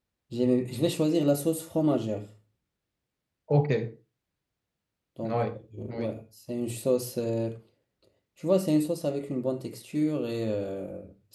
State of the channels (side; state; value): both; identical; correlation 1.00